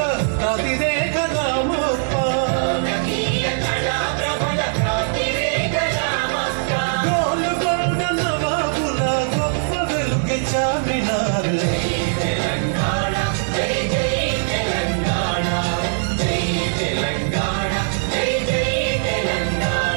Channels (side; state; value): left; silent; digital silence